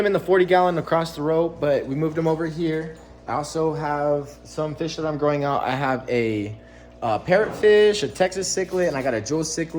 in the 40-gallon across the road, but we moved them over here. I also have some fish that I'm growing out. I have a parrotfish, a Texas cichlid, and I got a jewel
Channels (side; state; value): both; identical; correlation 1.00